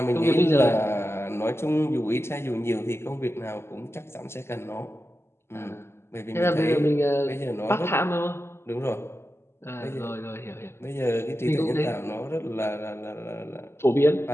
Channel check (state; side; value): late; right; 0.12 ms